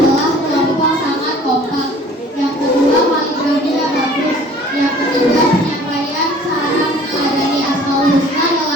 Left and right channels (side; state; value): both; normal; correlation 0.50